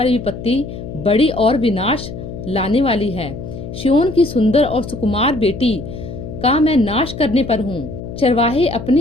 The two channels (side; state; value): left; noise; hum, 10 dB below the sound